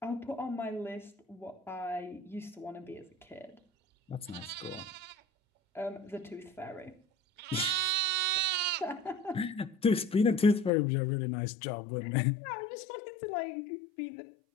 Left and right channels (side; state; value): right; drops out; at 10.7 s